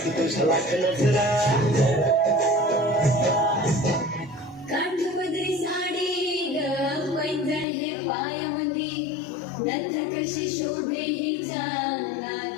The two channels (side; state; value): right; drops out; at 7.7 s